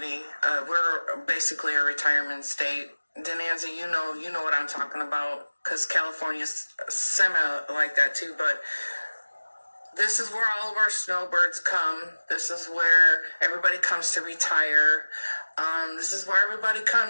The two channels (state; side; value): inverted; both; correlation -1.00